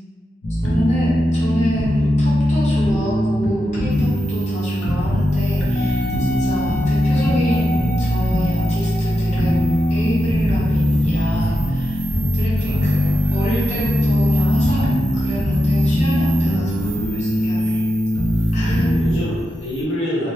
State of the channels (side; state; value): both; normal; correlation 0.88